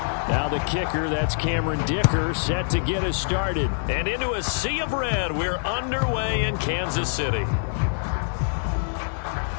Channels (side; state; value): right; silent; digital silence